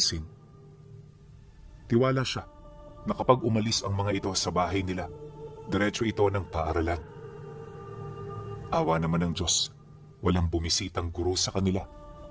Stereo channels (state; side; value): identical; both; correlation 1.00